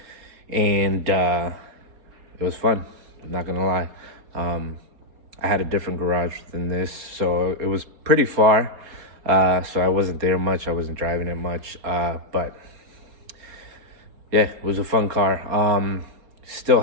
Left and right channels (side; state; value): left; late; 4.3 ms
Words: and it was fun, I'm not gonna lie. I had a different garage than this, so it was pretty far. So I wasn't there much, I wasn't driving it much, but yeah, it was a fun car. Still